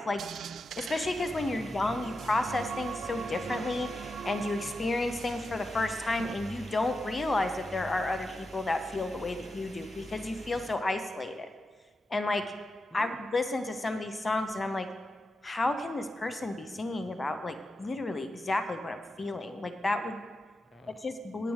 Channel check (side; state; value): both; normal; correlation 0.89